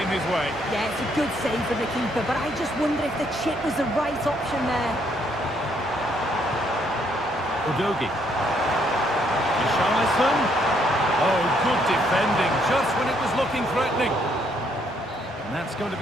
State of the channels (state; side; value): normal; both; correlation 0.70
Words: his way. Yeah, it's a good save from the keeper, but I just wonder if the chip was the right option there. Udogi. Richarlison. Oh, good defending, just when it was looking threatening. And that's going to